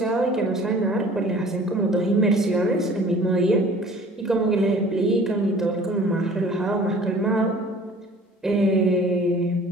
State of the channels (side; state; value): both; normal; correlation 0.48